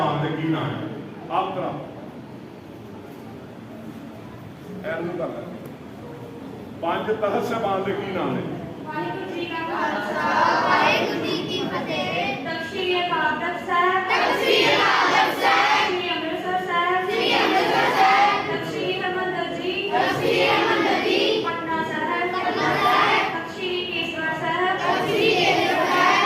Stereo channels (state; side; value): identical; both; correlation 1.00